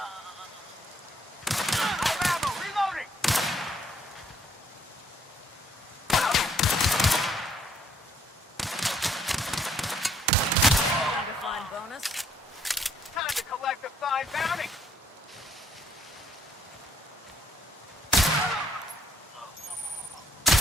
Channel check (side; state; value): both; normal; correlation 0.66